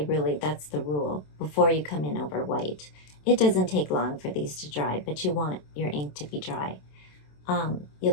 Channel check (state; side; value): late; right; 27 ms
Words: really that's the rule, before you come in over white. It doesn't take long for these to dry, but you want your ink to be dry.